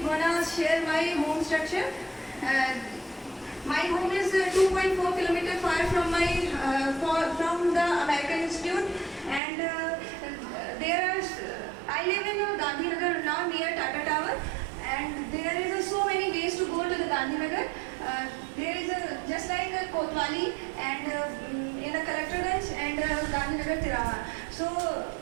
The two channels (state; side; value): drops out; left; at 9.4 s